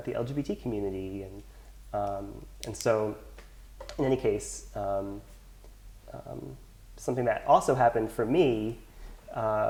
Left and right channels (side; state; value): both; identical; correlation 1.00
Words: LGBT community? And so, in any case, something that also happened for me